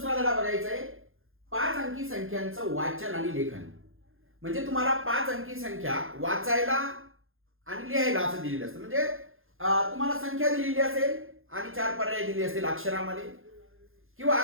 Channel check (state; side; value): late; left; 0.60 ms